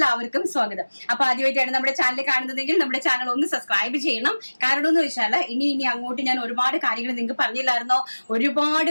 സ്വാഗതം. അപ്പൊ ആദ്യമായിട്ടാണ് നമ്മുടെ ചാനൽ കാണുന്നതെങ്കിൽ നമ്മുടെ ചാനൽ ഒന്ന് സബ്സ്ക്രൈബ് ചെയ്യണം. കാരണം എന്ന് വെച്ചാൽ ഇനി അങ്ങോട്ട് ഞാൻ ഒരുപാട് കാര്യങ്ങൾ നിങ്ങൾക്ക് പറഞ്ഞില്ലായിരുന്നോ,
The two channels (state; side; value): inverted; both; correlation -1.00